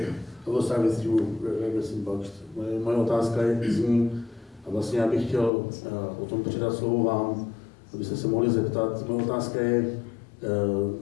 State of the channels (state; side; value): drops out; right; at 5.5 s